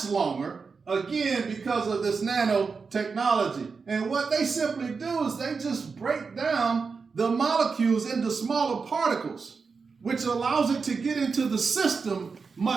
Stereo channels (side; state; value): left; quieter; 5.0 dB